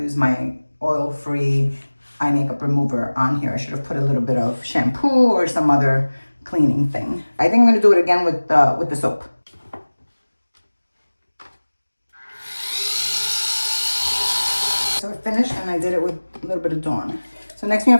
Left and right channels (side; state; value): both; inverted; correlation -1.00